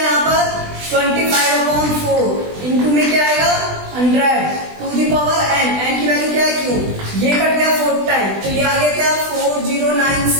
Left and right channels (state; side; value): late; left; 20 ms